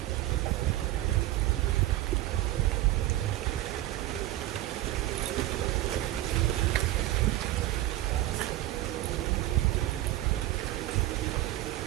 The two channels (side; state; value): left; quieter; 15.6 dB